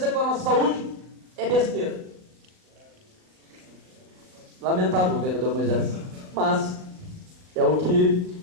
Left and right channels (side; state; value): left; late; 38 ms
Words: com a nossa saúde, é besteira. Lamentável, vereador Moisés, mas é o